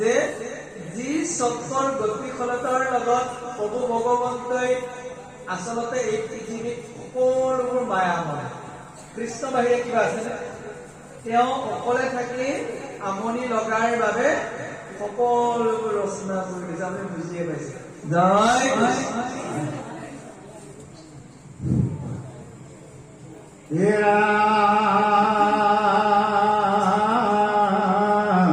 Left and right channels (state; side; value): identical; both; correlation 1.00